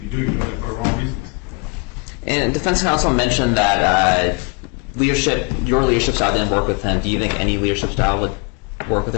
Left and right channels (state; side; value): quieter; right; 30.2 dB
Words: you do, you're doing it for the wrong reasons. And defense counsel mentioned that your leadership style didn't work with him. Do you think any leadership style would work with